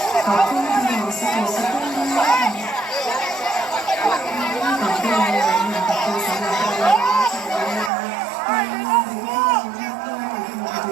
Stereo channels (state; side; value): drops out; left; at 7.9 s